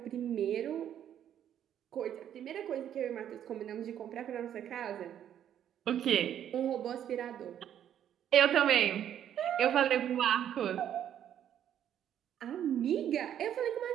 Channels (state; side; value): quieter; left; 10.1 dB